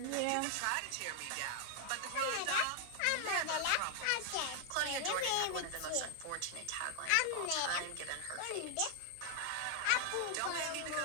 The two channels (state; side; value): different; both; correlation 0.00